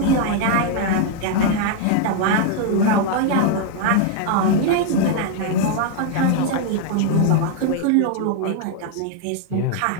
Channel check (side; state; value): both; different; correlation 0.00